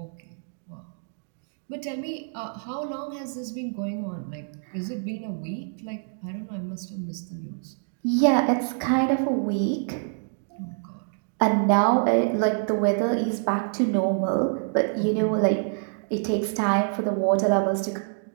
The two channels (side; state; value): left; silent; digital silence